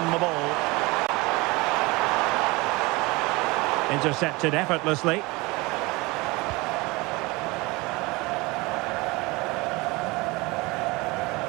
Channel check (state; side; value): quieter; left; 23.9 dB